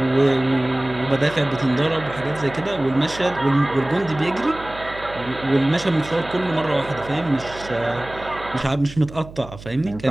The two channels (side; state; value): right; noise; hum, 16 dB below the sound